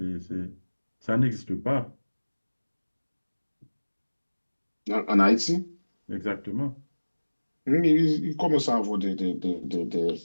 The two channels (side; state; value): both; inverted; correlation -1.00